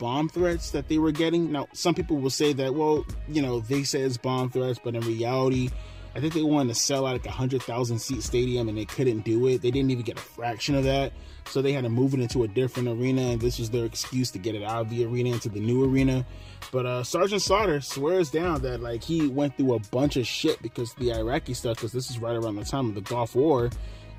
threats that they were getting. Now, some people will say that, well, you know, they say it's bomb threats, but in reality, I think they wanted to sell out like 100,000 seat stadium and they couldn't do it. They didn't even get a fraction of that. So they had to move it into a different arena, and this was their excuse to get it out of the arena into the new arena. But Sergeant Slaughter swears down that like he went through a bunch of shit because of the Iraqi stuff, because this is right around the time of the Gulf War.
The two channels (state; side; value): identical; both; correlation 1.00